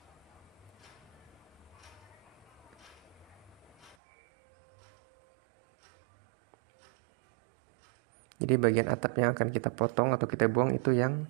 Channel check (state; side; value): drops out; left; at 4.0 s